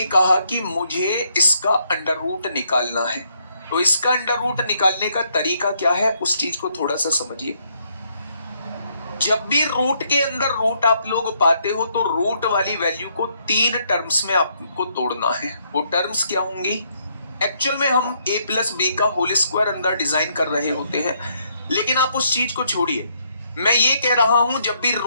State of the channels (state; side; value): inverted; both; correlation -0.72